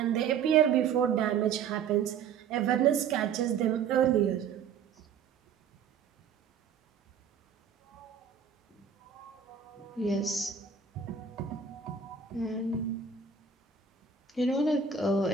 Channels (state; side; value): quieter; left; 6.7 dB